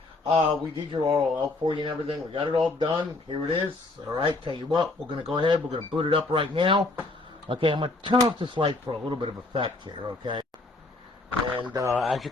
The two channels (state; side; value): quieter; right; 3.1 dB